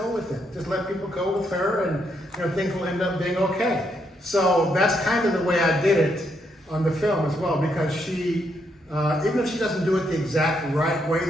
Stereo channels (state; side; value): normal; both; correlation 0.77